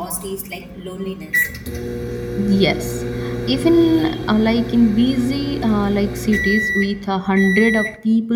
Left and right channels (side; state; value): both; identical; correlation 1.00